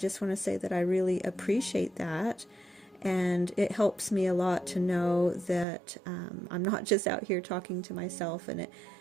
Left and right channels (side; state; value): left; drops out; at 5.7 s